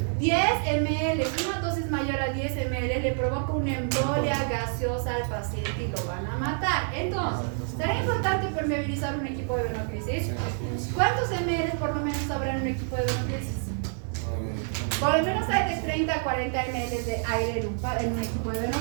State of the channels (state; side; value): silent; left; 60 dB below the other